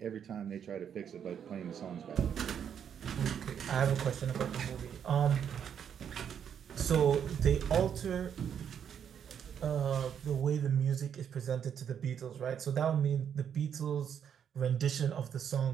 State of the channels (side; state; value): left; quieter; 8.3 dB